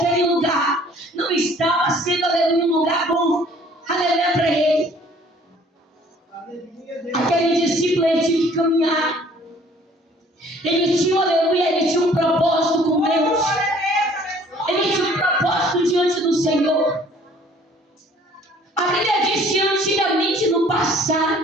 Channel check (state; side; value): normal; both; correlation 0.56